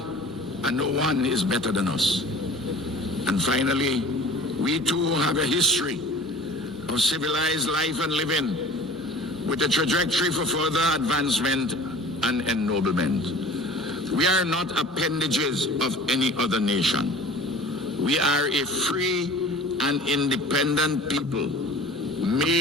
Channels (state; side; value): normal; both; correlation 0.42